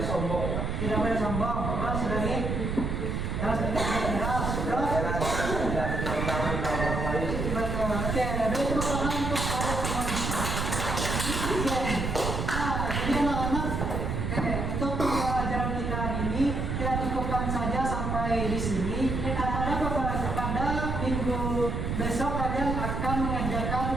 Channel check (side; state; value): right; noise; rumble, 1 dB below the sound